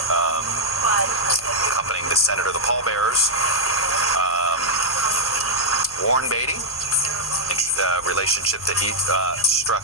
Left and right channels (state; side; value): noise; left; hum, 22 dB below the sound